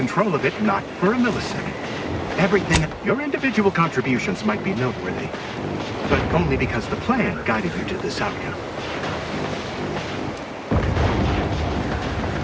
of it, not for a millisecond. Everything, your individual contributions might be noteworthy, but only because the plan guided you to this outcome.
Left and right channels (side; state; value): both; identical; correlation 1.00